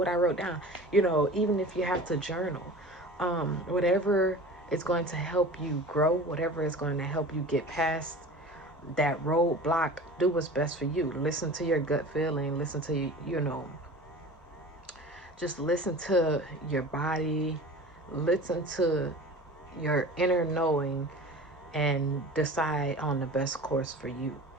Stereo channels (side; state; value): both; normal; correlation 0.38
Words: I wrote down. Even if you have to journal, whatever is going to help you grow, whatever is going to help you get past that roadblock, do what's best for you. Listen to your gut feeling. Listen to Just listen to your body, listen to your inner knowing, and decide on the best course for you.